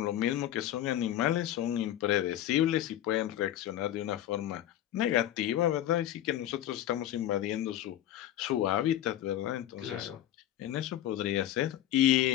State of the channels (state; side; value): quieter; right; 12.4 dB